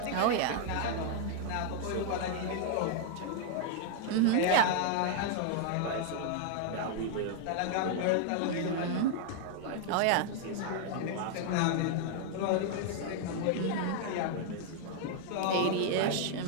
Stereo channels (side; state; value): both; different; correlation 0.00